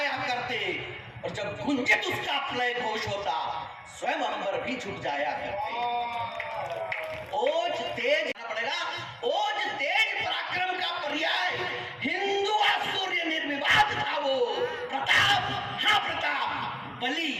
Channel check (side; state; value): both; identical; correlation 1.00